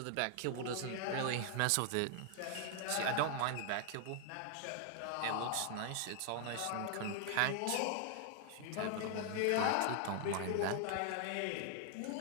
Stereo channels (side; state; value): both; different; correlation 0.00